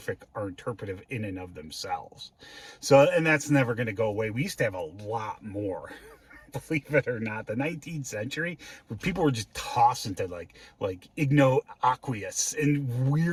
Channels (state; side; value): identical; both; correlation 1.00